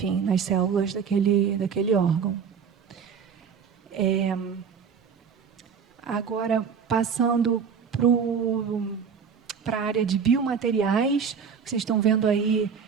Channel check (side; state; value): left; quieter; 6.6 dB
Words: nas células daquele órgão. Agora, passando para a área de biomateriais, vocês estão vendo aí,